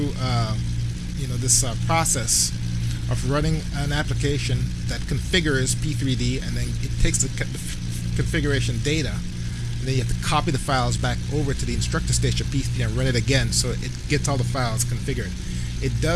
this process of running an application that configures P3D, and then it takes the configuration data, and then you have to copy the files back over to the Instructor Station P3D and run it again so it gets all the files configured. It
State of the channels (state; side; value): identical; both; correlation 1.00